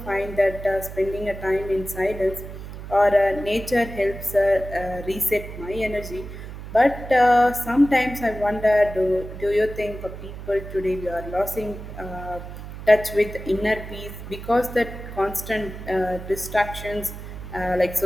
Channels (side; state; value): right; noise; hum, 11 dB below the sound